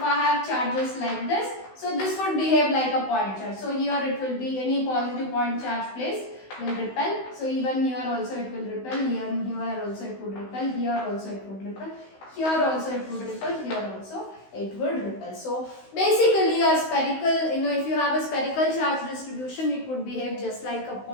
have charges like this, so this would behave like a point charge. So here it will be any positive point charge placed will repel. So even here also it will repel, here also it would repel, here also it would repel, here also it would repel, here also it would repel. So basically a spherical, if you have a spherical charge distribution, it would behave just like a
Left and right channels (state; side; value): late; right; 16 ms